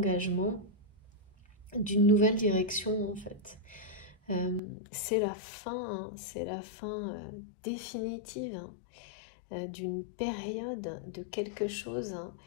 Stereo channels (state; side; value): drops out; right; at 4.6 s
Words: d'une nouvelle direction, en fait. C'est la fin, hein, c'est la fin définitive d'une période, de quelque chose. Hein.